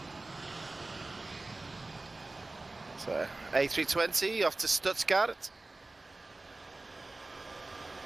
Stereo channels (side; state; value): left; quieter; 3.1 dB